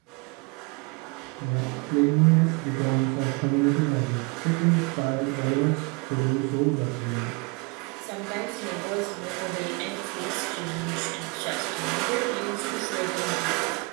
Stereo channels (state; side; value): quieter; left; 29.9 dB